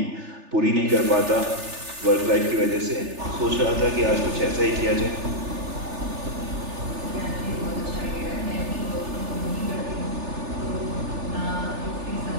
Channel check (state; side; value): late; left; 3.4 ms